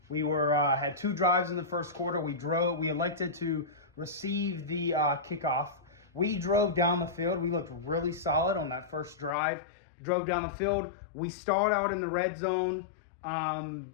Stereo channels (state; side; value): drops out; right; at 9.3 s